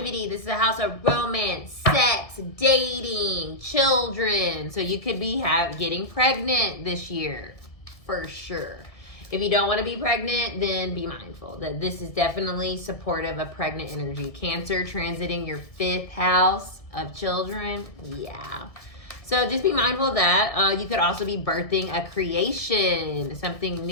This is a house of romance, sex, dating, children. So you could be getting pregnant this year. For sure. If you don't want to be pregnant, then be mindful that this is definitely supportive of pregnant energy. Cancer transiting your 5th house of children. Yeah. So just be mindful of that. You could also be birthing a creation, something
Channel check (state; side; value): late; right; 1.7 ms